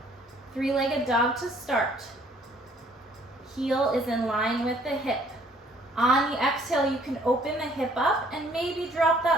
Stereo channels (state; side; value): normal; both; correlation 0.60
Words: Three-legged dog to start. Heel is in line with the hip. On the exhale, you can open the hip up and maybe drop